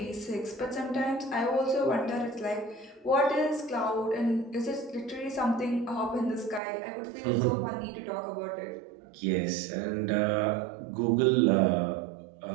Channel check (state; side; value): drops out; left; at 6.6 s